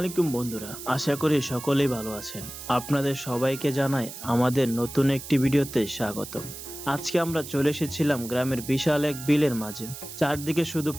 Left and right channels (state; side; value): noise; right; hiss, 12 dB below the sound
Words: বন্ধুরা, আশা করি সকলেই ভালো আছেন। আপনাদের সবাইকে জানাই আমাদের নতুন একটি ভিডিওতে স্বাগতম। আজকে আমরা চলে এসেছিলাম গ্রামের বিশাল এক বিলের মাঝে। চারদিকে শুধু